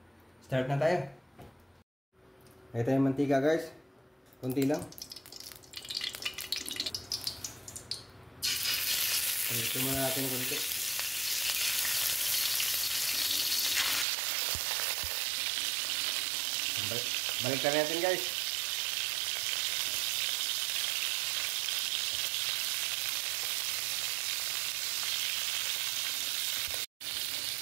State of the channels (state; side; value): drops out; left; at 14.1 s